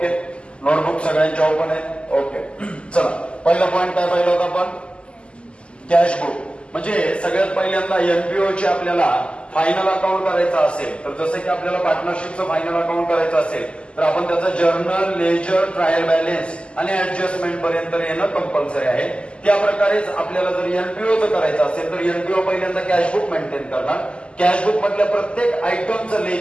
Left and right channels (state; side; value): late; right; 0.053 ms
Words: नोटबुक सगळ्यांच्या ओपन आहे. ओके, चला पहिला पॉइंट काय पाहिलं होता आपण? कॅशबुक. म्हणजे सगळ्यात पहिल्यांदा एनपीओ चे आपल्याला फायनल अकाउंट करायचं असेल तर जसं की आपल्याला पार्टनरशिपचं फायनल अकाउंट करायचं असेल तर आपण त्याचं जर्नल, लेजर, ट्रायल बॅलन्स आणि ऍडजस्टमेंट पर्यंत येणं कंपल्सरी आहे. त्या प्रकारेच आपल्याला जर एनपीओचं करायचं असेल तर एनपीओ पहिल्यांदा कॅशबुक मेंटेन करणार. कॅशबुक मधल्या प्रत्येक आयटमचं